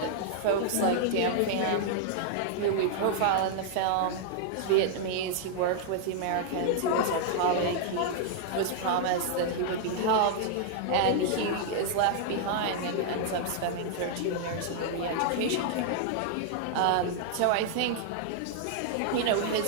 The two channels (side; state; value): both; different; correlation -0.01